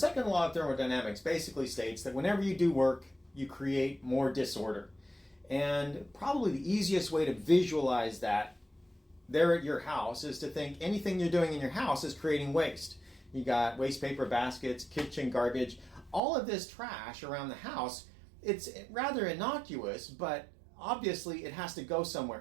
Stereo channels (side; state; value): left; drops out; at 16.2 s